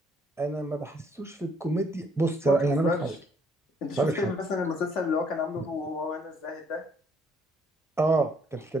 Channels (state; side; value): normal; both; correlation 0.66